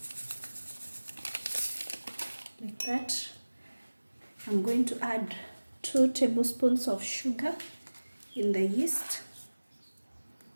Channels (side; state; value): both; inverted; correlation -1.00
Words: Like that. I'm going to add 2 tablespoons of sugar in the yeast.